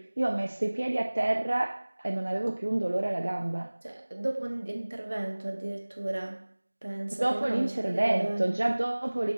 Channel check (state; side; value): inverted; both; correlation -1.00